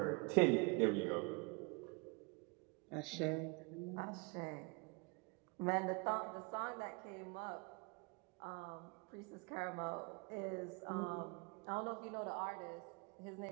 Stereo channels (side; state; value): left; quieter; 31.8 dB